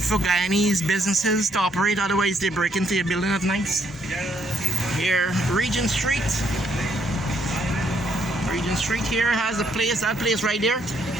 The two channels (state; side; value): normal; both; correlation 0.71